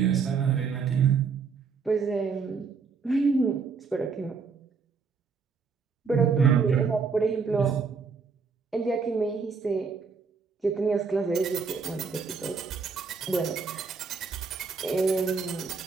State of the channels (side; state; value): left; quieter; 5.3 dB